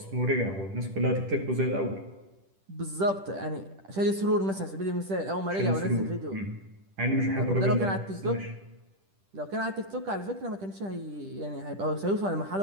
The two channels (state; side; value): late; left; 10 ms